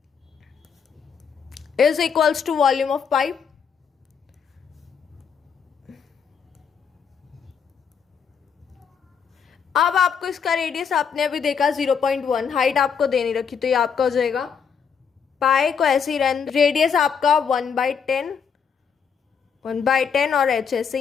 is equals to volume of pipe। अब आपको इसका रेडियस आपने अभी देखा 0.1, हाइट आपको देनी रखी, तो ये आपका हो जाएगा पाई को ऐसे ही रहने, रेडियस आपका 1/10 और एच ऐसे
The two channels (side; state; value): right; quieter; 6.7 dB